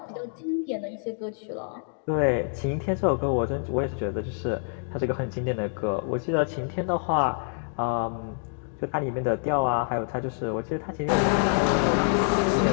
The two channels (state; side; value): silent; right; digital silence